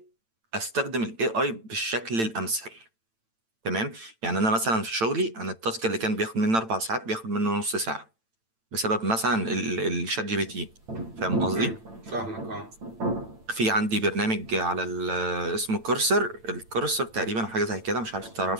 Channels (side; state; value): left; late; 8.9 ms